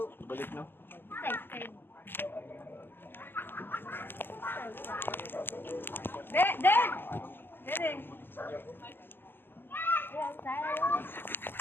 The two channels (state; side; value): late; right; 0.097 ms